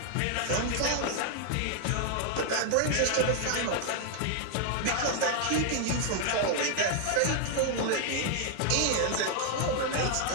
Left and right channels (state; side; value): different; both; correlation 0.00